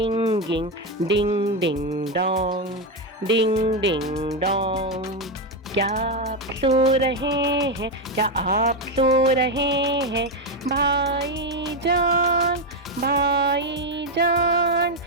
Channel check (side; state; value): both; normal; correlation 0.07